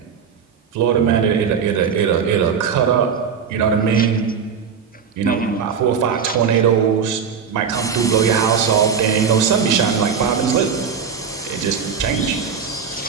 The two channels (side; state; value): left; quieter; 6.7 dB